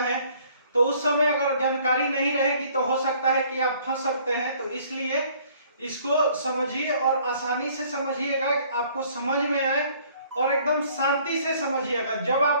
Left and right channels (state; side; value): inverted; both; correlation -0.58